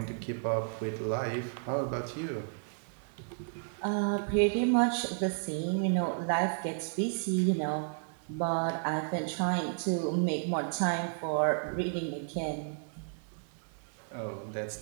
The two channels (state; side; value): silent; left; 56 dB below the other